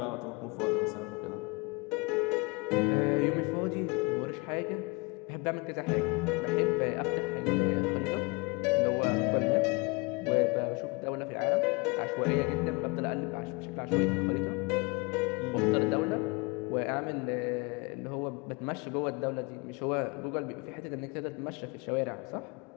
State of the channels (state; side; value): quieter; right; 28.6 dB